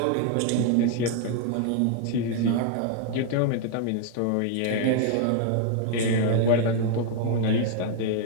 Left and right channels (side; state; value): both; different; correlation 0.00